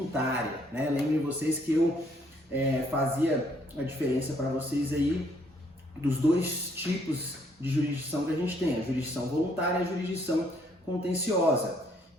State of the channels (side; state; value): both; normal; correlation 0.67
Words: né? Lembrem vocês que eu fazia a diferença para vocês aí dos dois tipos de jurisdição que a gente tem, a jurisdição voluntária e a jurisdição contenciosa.